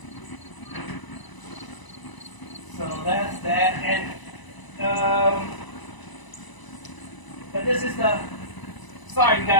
So that's that. And but this is the. Sorry, you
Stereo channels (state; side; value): late; right; 1.0 ms